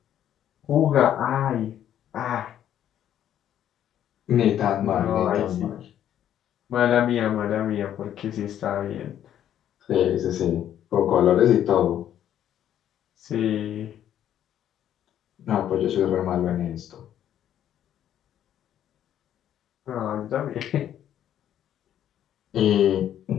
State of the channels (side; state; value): right; quieter; 10.7 dB